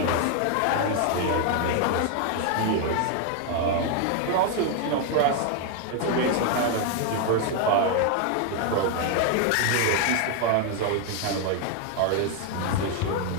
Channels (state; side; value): different; both; correlation 0.00